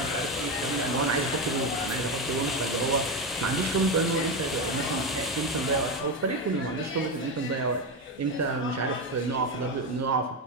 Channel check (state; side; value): normal; both; correlation 0.14